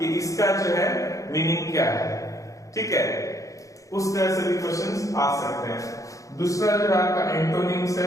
इसका जो है मीनिंग क्या है, ठीक है। उस तरह से भी क्वेश्चंस आ सकते हैं। दूसरा जो आपका एंटोनिम्स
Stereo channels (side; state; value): right; late; 0.16 ms